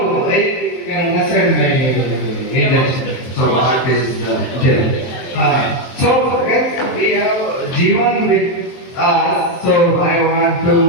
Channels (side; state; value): right; late; 23 ms